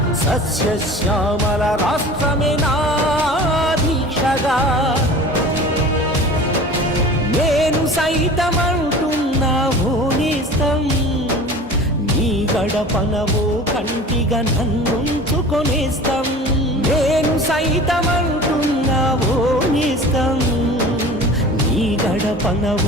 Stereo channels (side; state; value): both; normal; correlation 0.40